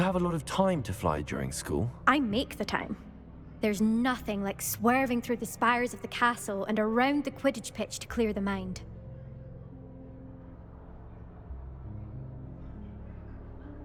have a lot of time to fly during school? I make the time. There's nothing like swerving through the spires of the castle and around the Quidditch pitch to clear the mind.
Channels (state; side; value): identical; both; correlation 1.00